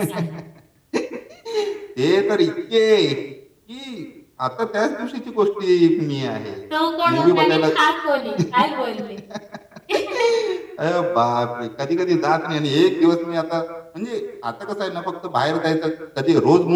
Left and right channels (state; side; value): identical; both; correlation 1.00